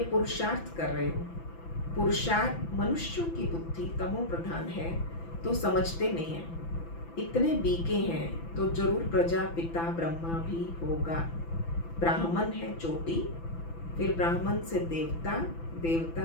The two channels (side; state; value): right; late; 6.0 ms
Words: पुरुषार्थ कर रहे हो। पुरुषार्थ मनुष्यों की बुद्धि तमो प्रधान है तो समझते नहीं है। इतने बीके हैं तो जरूर प्रजा पिता ब्रह्मा भी होगा। ब्राह्मण है चोटी, फिर ब्राह्मण से देवता,